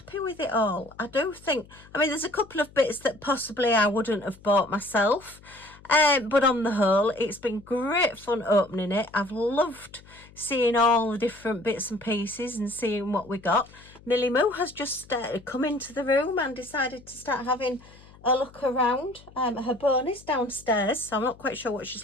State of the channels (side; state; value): left; noise; hum, 23 dB below the sound